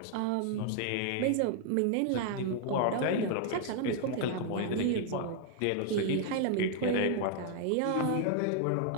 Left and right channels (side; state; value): both; different; correlation 0.00